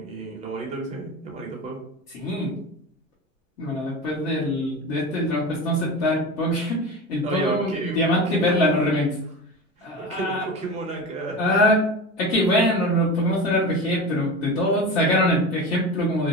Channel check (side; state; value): both; normal; correlation 0.28